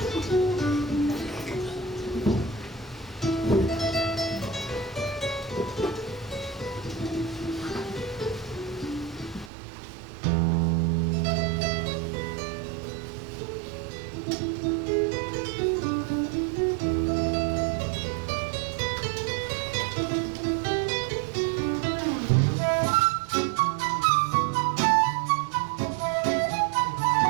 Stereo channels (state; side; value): drops out; left; at 9.5 s